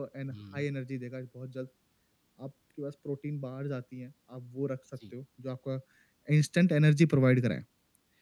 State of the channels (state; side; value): identical; both; correlation 1.00